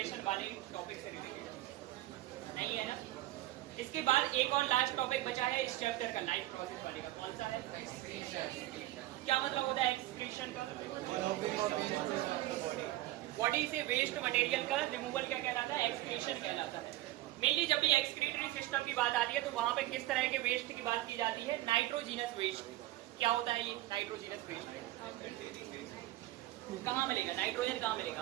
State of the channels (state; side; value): quieter; left; 16.7 dB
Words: वाले टॉपिक से रिलेटेड? नहीं है ना? इसके बाद एक और लास्ट टॉपिक बचा है इस चैप्टर का, लाइफ प्रोसेस वाले का। कौन सा है? क्या मतलब होता है एक्सक्रीशन का? बॉडी से वेस्ट मटेरियल का रिमूवल क्या कहलाता है? एक्सक्रीशन कहलाता है। मेनली जब भी एक्सक्रीटरी सिस्टम की बात आती है तो वहां पे किस तरह के वेस्ट की बात की जाती है? Nitrogenous waste. क्या होता है ये नाइट्रोजीनस वेस्ट? कहाँ मिलेगा नाइट्रोजन? कहाँ मिलेगा